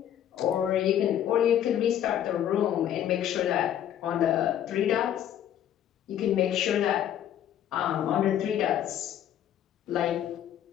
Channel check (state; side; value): quieter; right; 10.6 dB